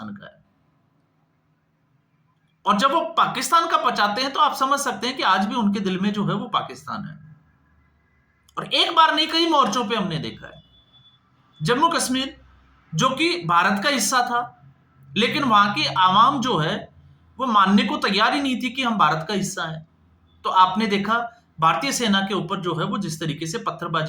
का है। और जब वो पाकिस्तान का पचाते हैं तो आप समझ सकते हैं कि आज भी उनके दिल में जो है वो पाकिस्तान है। और एक बार नहीं, कई मोर्चों पे हमने देखा है। जम्मू कश्मीर जो कि भारत का हिस्सा था, लेकिन वहां की आवाम जो है वो मानने को तैयार ही नहीं थी कि हम भारत का हिस्सा है। तो आपने देखा भारतीय सेना के ऊपर जो है वो जिस तरीके से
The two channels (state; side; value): identical; both; correlation 1.00